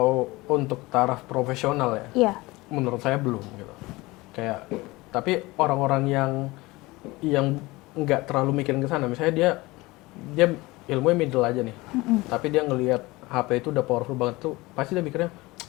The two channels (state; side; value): quieter; right; 21.5 dB